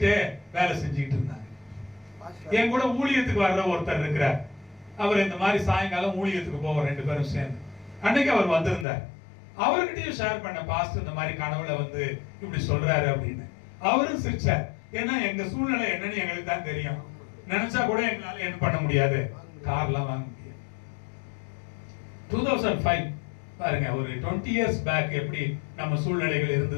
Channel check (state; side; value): drops out; right; at 8.8 s